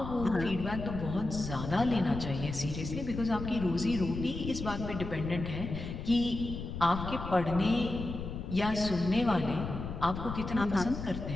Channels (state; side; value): noise; left; rumble, 7 dB below the sound